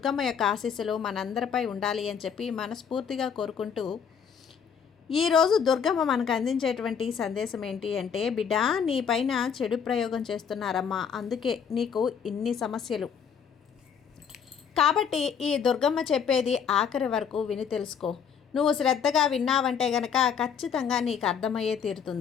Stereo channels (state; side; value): quieter; right; 7.2 dB